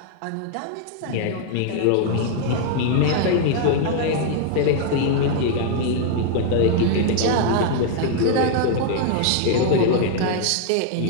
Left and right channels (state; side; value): different; both; correlation 0.00